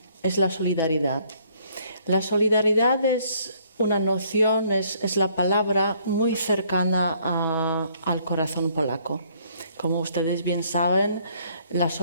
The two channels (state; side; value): inverted; both; correlation -0.65